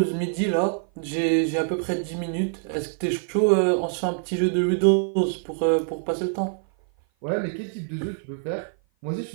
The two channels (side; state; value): left; silent; 56 dB below the other